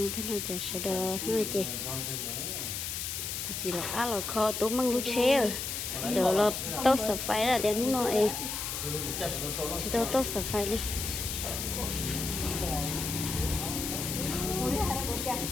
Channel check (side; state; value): left; noise; hiss, 3 dB below the sound